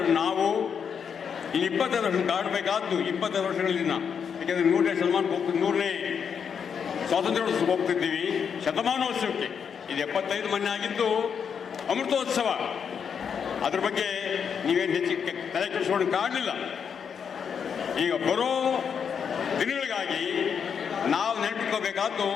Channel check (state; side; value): quieter; right; 7.1 dB